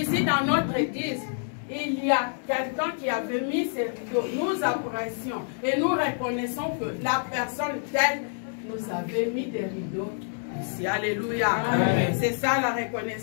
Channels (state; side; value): silent; right; digital silence